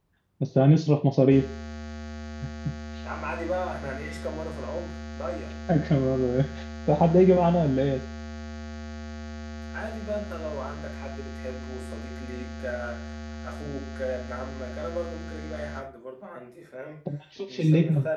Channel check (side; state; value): both; identical; correlation 1.00